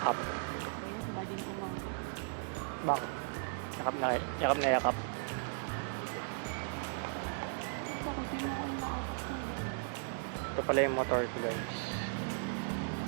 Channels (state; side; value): silent; left; digital silence